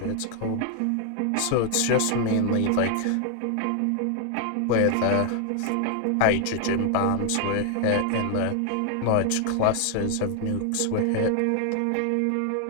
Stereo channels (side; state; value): both; different; correlation 0.00